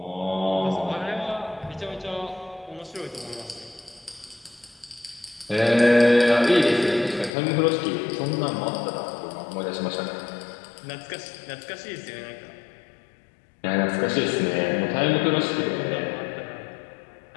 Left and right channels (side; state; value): right; drops out; at 7.3 s